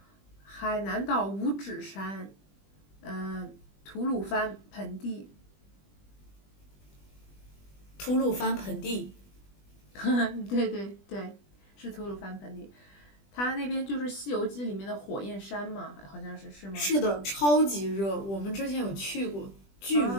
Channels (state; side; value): late; right; 20 ms